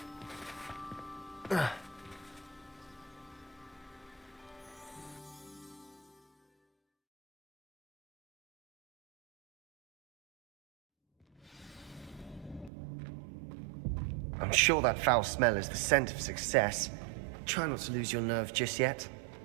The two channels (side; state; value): left; drops out; at 12.7 s